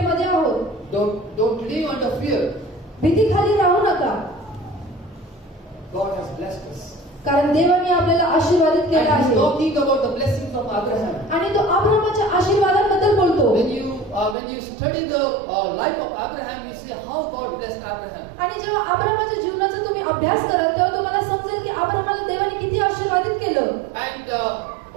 आहोत. Don't live under fear. भीतीखाली राहू नका. God has blessed us. कारण देवाने आपल्याला आशीर्वादित केलं And He's आहे. talking about the blessings of Abraham. आणि तो अब्राहमाच्या आशीर्वादाबद्दल बोलतो. When you study the life of Abraham, you see how God blessed Abraham. आणि जेव्हा अब्राहमाच्या जीवनाचा तुम्ही अभ्यास कराल तेव्हा तुम्हाला समजेल की अब्राहमाला देवाने किती आशीर्वादित केलं. And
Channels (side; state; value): left; drops out; at 14.4 s